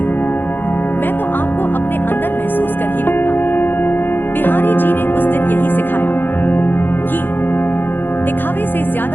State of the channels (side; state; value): right; late; 0.097 ms